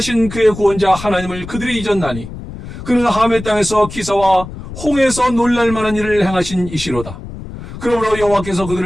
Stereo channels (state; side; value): noise; left; rumble, 11 dB below the sound